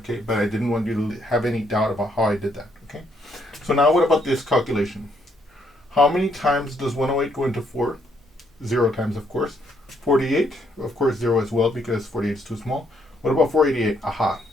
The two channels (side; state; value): both; normal; correlation 0.72